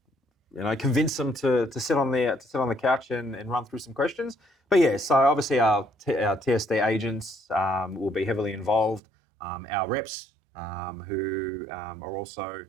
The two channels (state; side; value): drops out; left; at 9.0 s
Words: convince them to sit on the couch and run through some questions. But yeah, so obviously our TSD agents will be heavily involved. Our reps who are also